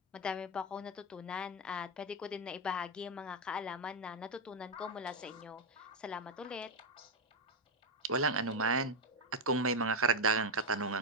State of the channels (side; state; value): both; normal; correlation 0.04